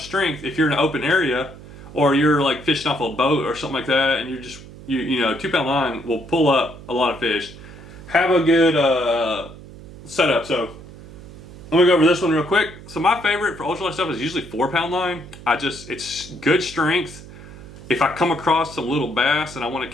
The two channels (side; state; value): right; noise; hum, 16 dB below the sound